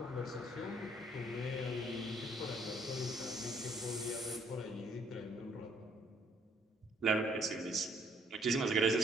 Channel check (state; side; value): normal; both; correlation 0.64